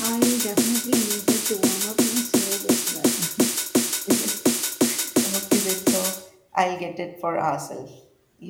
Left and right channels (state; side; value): identical; both; correlation 1.00